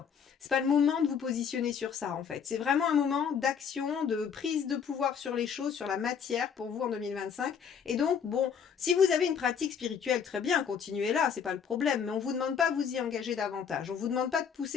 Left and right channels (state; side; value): quieter; right; 7.1 dB